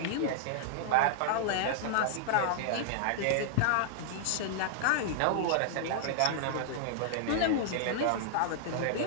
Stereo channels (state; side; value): different; both; correlation -0.01